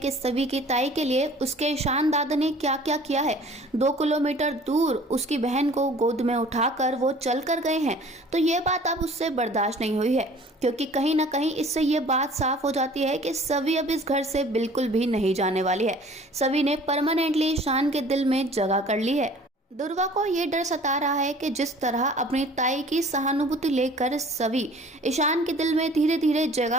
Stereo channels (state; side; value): normal; both; correlation 0.49